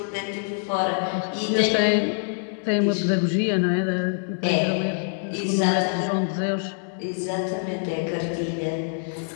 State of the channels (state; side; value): silent; right; digital silence